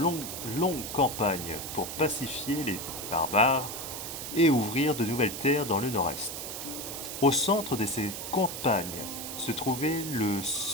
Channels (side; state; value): right; noise; hiss, 7 dB below the sound